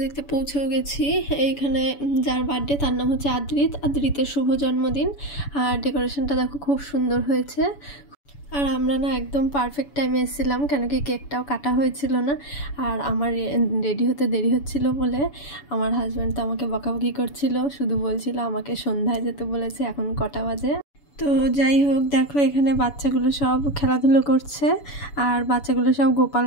দেখতে পৌঁছেও গেছি। এইখানে যার বার্থডে তার নাম হচ্ছে আদ্রিতের শুভ জন্মদিন। আর ডেকোরেশনটা দেখো, খুব সুন্দর হয়েছে। আর আমরা না একদম পারফেক্ট টাইমে এসেছিলাম, কেন কি কেকটাও কাটা হয়েছিল না। আর আমার রেডি হতে দেরি হচ্ছিল বলে আমার হাজব্যান্ড তো আমাকে বকাবকি করছিল, শুধু বলছিল আমাকে সন্ধ্যায় যেতে বলেছে, এখন কটা বাজে। তো যাই হোক, দেখো এখানে বাচ্চাগুলো সব খেলাধুলো করছে। আর বাচ্চাগুলো সব গোপাল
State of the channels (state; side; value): late; right; 7.0 ms